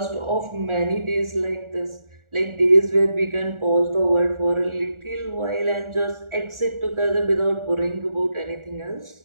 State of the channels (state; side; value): late; left; 1.4 ms